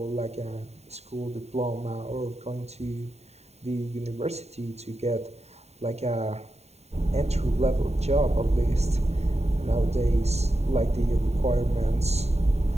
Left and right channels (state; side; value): late; left; 0.31 ms